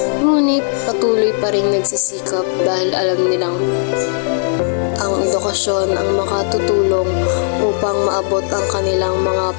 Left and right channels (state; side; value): silent; right; 69 dB below the other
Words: Ngunit patuloy pa rin nagsisikap dahil alam nilang ang edukasyon ang makatutulong upang maabot ang kanilang mga